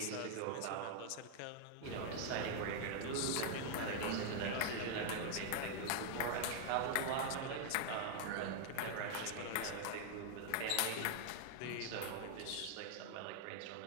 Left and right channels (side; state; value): both; different; correlation 0.00